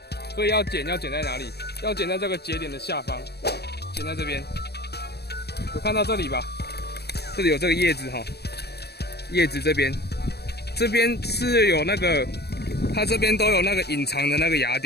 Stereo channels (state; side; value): late; right; 0.47 ms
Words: 所以要剪在哪里？要剪在这个节点的下方，剪在这边。有看到这里吧？这里有这个叶子叶子这边是有那个，它这边都有那个隐藏的那个芽